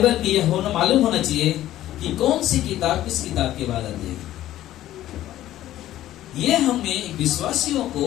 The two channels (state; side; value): quieter; right; 13.7 dB